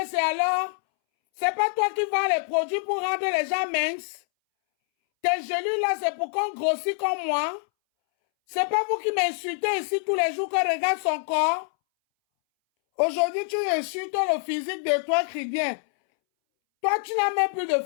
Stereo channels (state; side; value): silent; right; 61 dB below the other